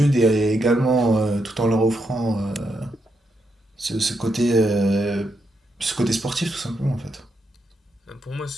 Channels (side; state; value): both; normal; correlation 0.81